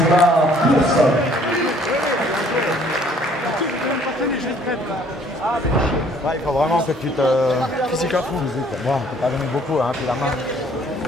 là pour ça. Ouais, il faut vraiment que tu te... Physique à fond. Bon, on peut pas donner beaucoup, hein, puis la main.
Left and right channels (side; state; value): both; normal; correlation 0.60